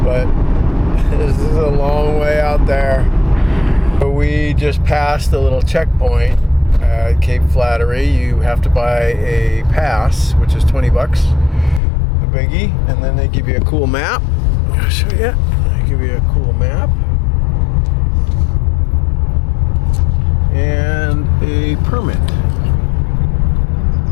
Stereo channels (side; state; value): right; drops out; at 11.8 s